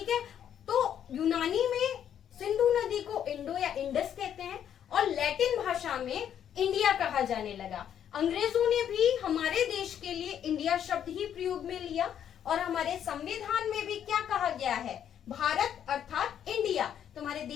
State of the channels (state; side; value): quieter; right; 9.5 dB